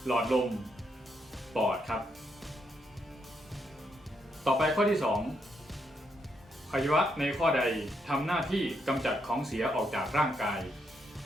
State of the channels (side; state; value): both; normal; correlation 0.78